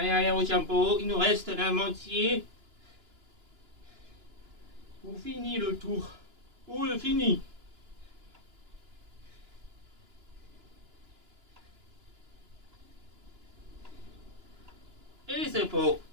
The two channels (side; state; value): left; late; 2.9 ms